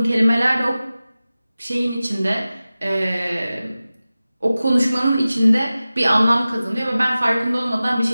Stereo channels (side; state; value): both; inverted; correlation -0.96